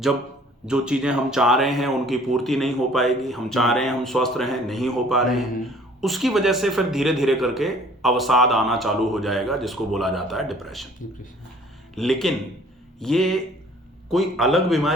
जो चीजें हम चाह रहे हैं उनकी पूर्ति नहीं हो पाएगी, हम चाह रहे हैं हम स्वस्थ रहें, नहीं हो पा रहे हैं, उसकी वजह से फिर धीरे धीरे करके अवसाद आना चालू हो जाएगा, जिसको बोला जाता है डिप्रेशन। लेकिन ये कोई अलग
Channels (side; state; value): both; normal; correlation 0.54